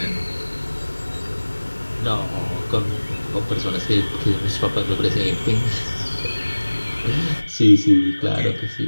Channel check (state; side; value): inverted; both; correlation -1.00